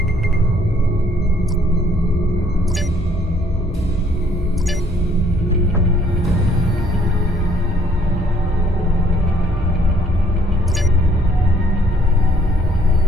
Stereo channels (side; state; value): both; normal; correlation 0.64